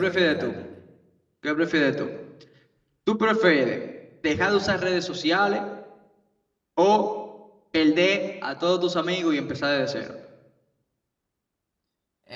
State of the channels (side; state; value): both; identical; correlation 1.00